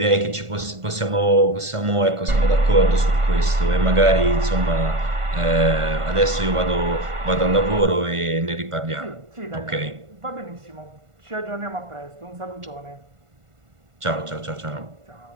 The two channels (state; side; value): late; left; 1.5 ms